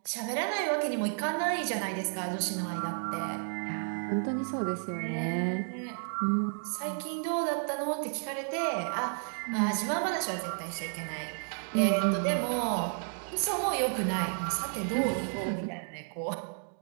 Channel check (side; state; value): left; silent; 56 dB below the other